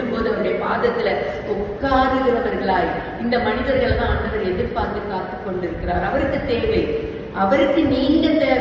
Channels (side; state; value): both; identical; correlation 1.00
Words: போது அவருடைய பாதத்துல உட்காருகிறவர்களாய் இந்த மனிதர்கள் தான் ஆண்டவர் எதிர்பார்த்து காத்து கொண்டிருக்கிறார். அவருக்கு தேவை, அவருக்கு நீங்க